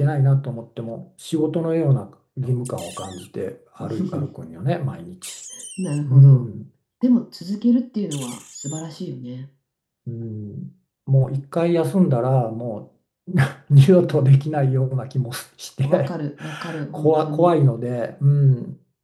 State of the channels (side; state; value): both; identical; correlation 1.00